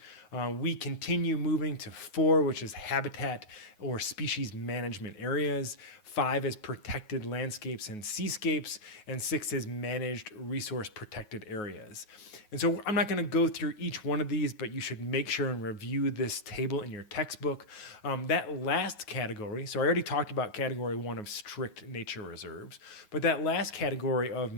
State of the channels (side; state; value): right; late; 9.4 ms